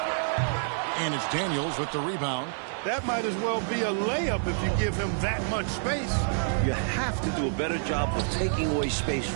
And it's Daniels with the rebound. That might as well be a layup if you give him that much space. You have to do a better job of taking away space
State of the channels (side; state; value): left; silent; digital silence